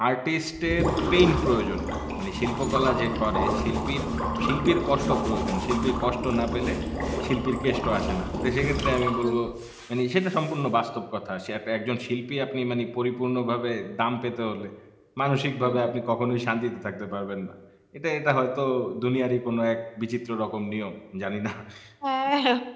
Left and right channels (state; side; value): identical; both; correlation 1.00